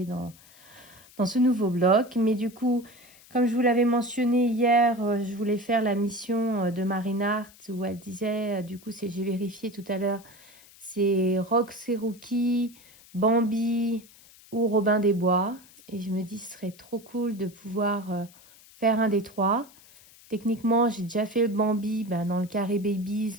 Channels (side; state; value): left; noise; hiss, 24 dB below the sound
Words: dans ce nouveau bloc. Mais du coup, comme je vous l'avais mentionné hier, je voulais faire la mission de Marine Art où elle disait, du coup, j'ai vérifié tout à l'heure, c'est Rock Seruki, Bambi ou Robin des Bois. Et je me dis, ce serait trop cool de pouvoir faire un des trois. Techniquement, j'ai déjà fait le Bambi dans le carré Babies,